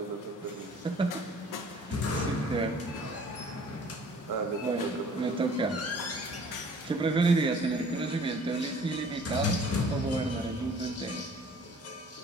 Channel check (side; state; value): both; normal; correlation 0.52